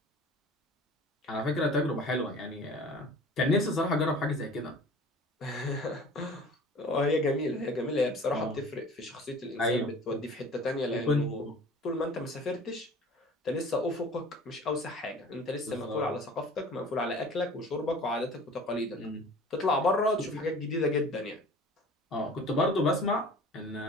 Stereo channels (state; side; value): normal; both; correlation 0.44